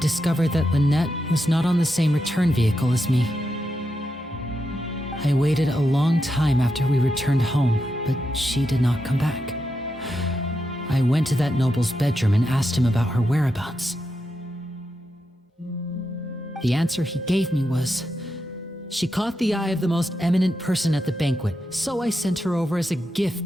that Lynette was not on the same return vehicle as me. I waited a long time after we returned home, but she did not come back. I went to that noble's bedroom and asked him about her whereabouts. The answer he gave me was, she caught the eye of the most eminent person at the banquet, so I sent her over as a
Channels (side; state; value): both; normal; correlation 0.86